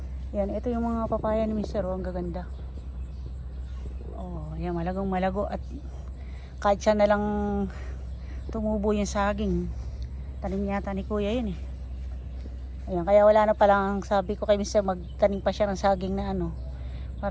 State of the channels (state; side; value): identical; both; correlation 1.00